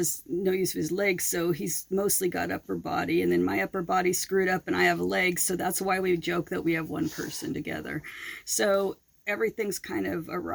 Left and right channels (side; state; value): both; identical; correlation 1.00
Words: no use of his legs, so he's mostly got upper body, and then my upper body's screwed up and I have legs, so that's why we joke that we have one person together. So everything's kind of